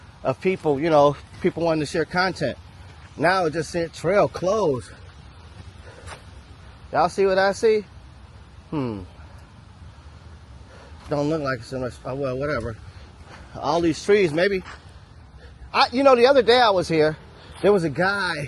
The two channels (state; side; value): identical; both; correlation 1.00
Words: of people, you know, people wanting to share content. Now it just said trail closed. Y'all see what I see? Don't look like so much. Oh, well, whatever. All these trees, maybe. You know, the other day I was here, there was a